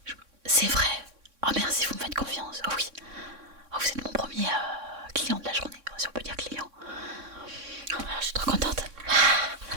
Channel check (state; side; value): late; left; 3.6 ms